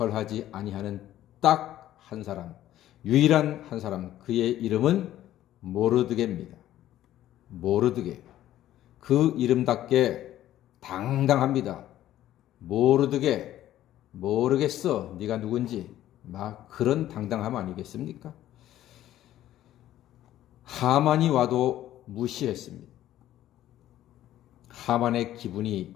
아니하는 딱 한 사람, 유일한 한 사람, 그의 이름은 모르드게입니다. 모르드게. 그 이름답게 당당합니다. 모르드게, 모르겠어, 네가 누군지. 막 그런 당당함 아니겠습니까? 하만이 와도 무시했습니다. 하만의 기분이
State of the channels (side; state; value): right; quieter; 13.1 dB